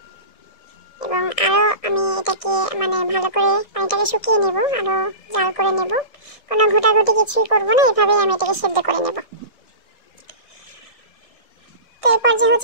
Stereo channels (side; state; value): right; late; 1.6 ms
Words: এবং আরও আমি এটাকে ভালো করে পানিটাকে শুকিয়ে নেব, আরও জাল করে নেব। কোনো ঘোটাঘুটি কিছুই করবো না, এভাবেই আমি এটাকে সেদ্ধ করে নেব। তো এরপর যে